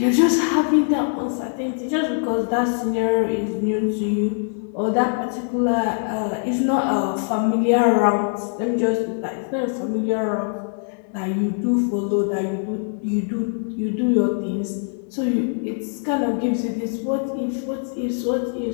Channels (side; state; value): right; silent; 64 dB below the other